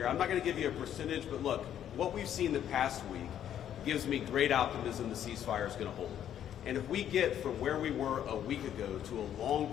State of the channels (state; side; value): quieter; right; 10.3 dB